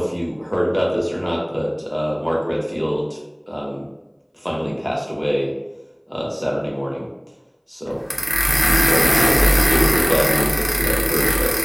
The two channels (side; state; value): both; identical; correlation 1.00